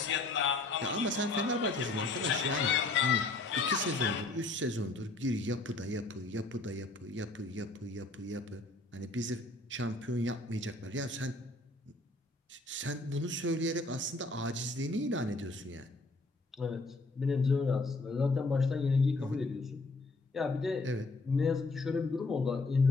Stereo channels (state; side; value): quieter; right; 3.2 dB